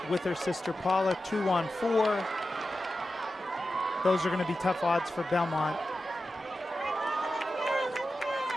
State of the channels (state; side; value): normal; both; correlation 0.92